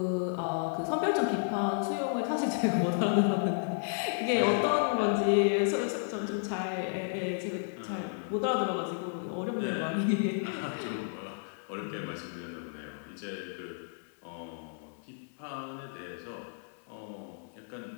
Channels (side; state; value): right; silent; digital silence